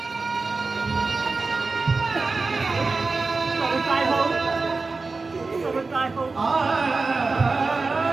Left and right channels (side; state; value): left; quieter; 3.9 dB